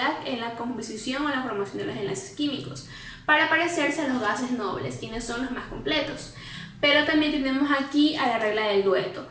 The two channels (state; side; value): identical; both; correlation 1.00